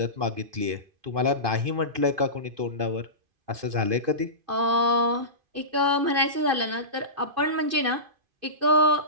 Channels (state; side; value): late; left; 2.5 ms